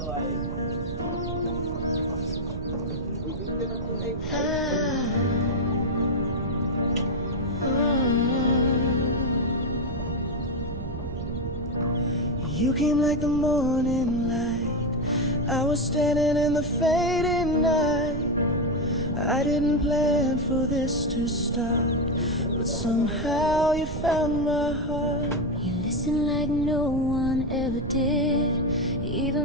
came like the morning light. I was standing in the fading night. I didn't plan for this to start, but somehow you found my heart. You listen like no one ever did.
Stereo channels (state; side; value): noise; right; rumble, 6 dB below the sound